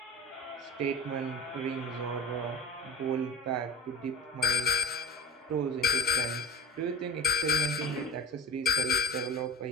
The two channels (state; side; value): normal; both; correlation 0.33